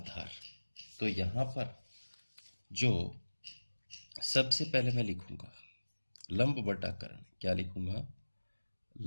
तो यहां पर जो सबसे पहले मैं लिखूंगा लंब बटा कर्ण। क्या लिखूंगा?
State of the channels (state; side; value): inverted; both; correlation -1.00